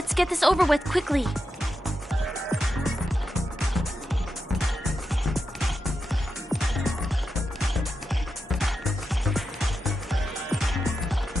get this over with quickly.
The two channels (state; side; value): normal; both; correlation 0.88